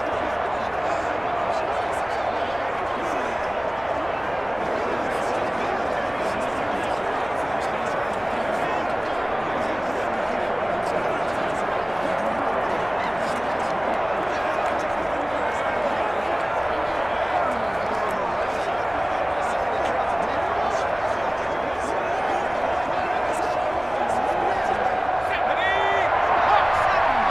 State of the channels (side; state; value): right; noise; hum, 22 dB below the sound